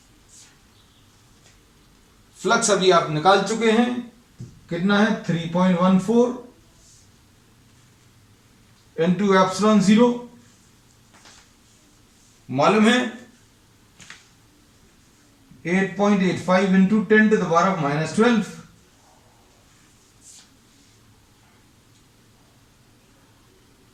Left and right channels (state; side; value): identical; both; correlation 1.00